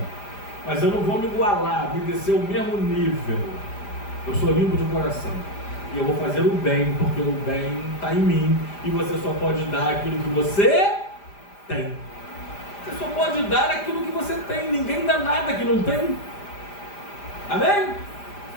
mas eu não vou me igualar, me descer o mesmo nível. Eu sou limpo de coração e eu vou fazer o bem, porque o bem está em mim e você só pode dar aquilo que você tem. Você só pode dar aquilo que você tem. Ninguém dá nada que não tem. Amém?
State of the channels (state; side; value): late; right; 5.0 ms